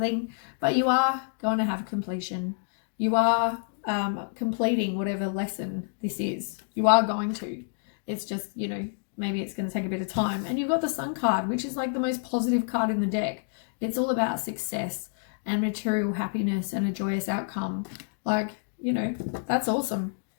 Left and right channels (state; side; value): silent; right; digital silence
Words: But you are going to have completion. You are completing whatever lesson this is. You are going to. It's just, you know, maybe it's going to take a bit of time. And you've got the Sun card, which is like the most positive card in the deck. It's all about success and material happiness and a joyous outcome. Like, you know, that's awesome.